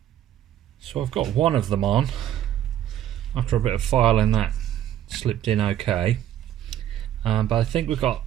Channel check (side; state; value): left; quieter; 11.4 dB